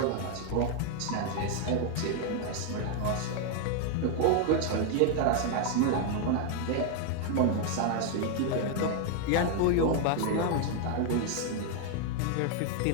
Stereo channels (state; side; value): different; both; correlation 0.00